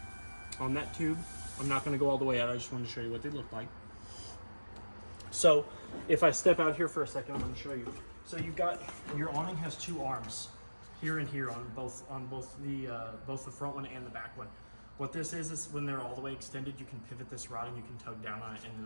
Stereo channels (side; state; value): both; inverted; correlation -1.00